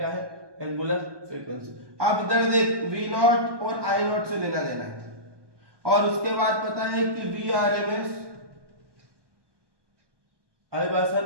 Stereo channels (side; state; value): left; late; 1.2 ms